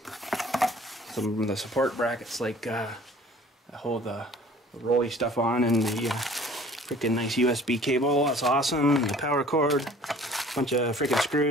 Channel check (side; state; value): both; normal; correlation 0.50